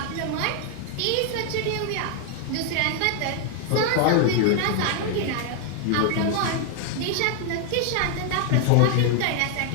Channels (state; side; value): different; both; correlation 0.00